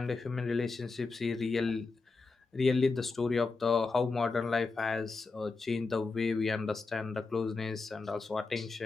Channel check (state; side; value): quieter; right; 4.1 dB